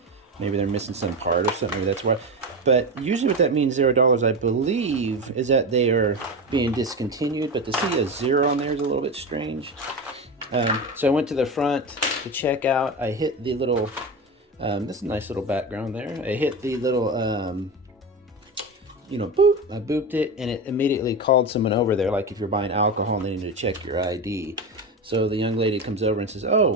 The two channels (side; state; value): both; normal; correlation 0.21